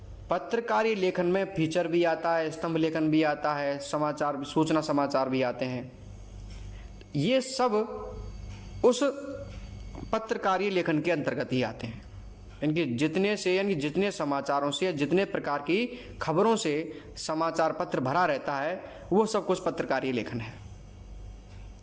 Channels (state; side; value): identical; both; correlation 1.00